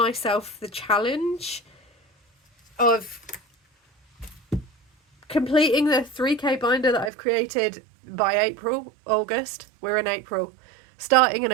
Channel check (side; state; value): left; drops out; at 7.1 s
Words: the challenge of completing the 3k binder that I've created by August. We're in April, starting in